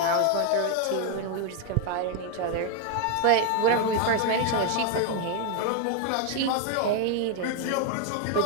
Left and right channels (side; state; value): both; different; correlation 0.00